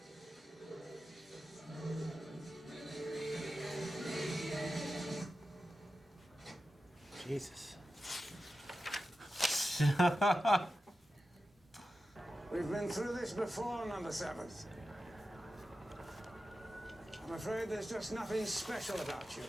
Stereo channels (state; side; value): normal; both; correlation 0.93